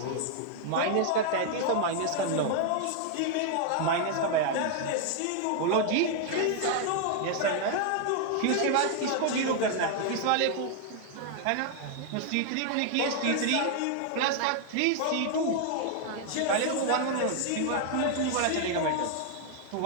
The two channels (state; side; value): different; both; correlation 0.00